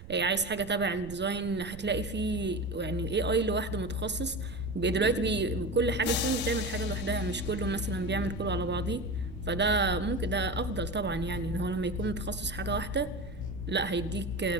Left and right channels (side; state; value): right; noise; rumble, 14 dB below the sound